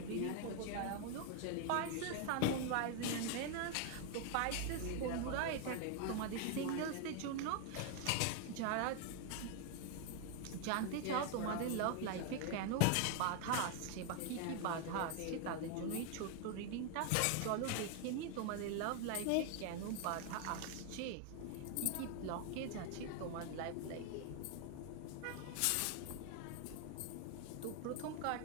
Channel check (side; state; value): both; different; correlation 0.00